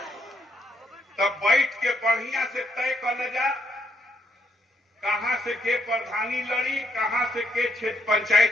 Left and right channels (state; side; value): normal; both; correlation 0.75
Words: तब बैठ के बढ़िया से तय कर ले जा कहां से के प्रधानी लड़ी, कहां से के क्षेत्र